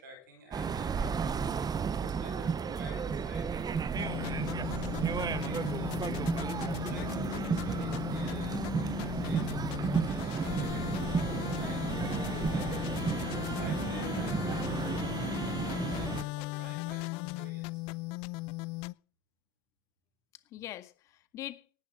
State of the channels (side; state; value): both; normal; correlation 0.51